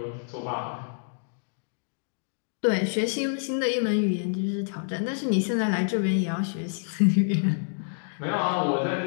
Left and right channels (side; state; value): right; silent; digital silence